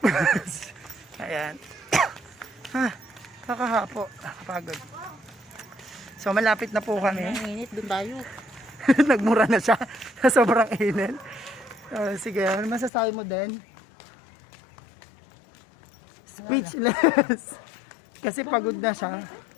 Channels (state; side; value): drops out; right; at 12.9 s